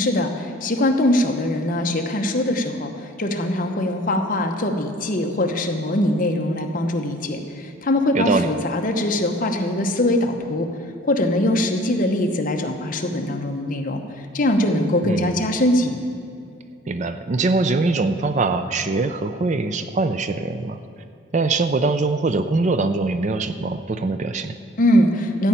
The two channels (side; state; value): both; normal; correlation 0.51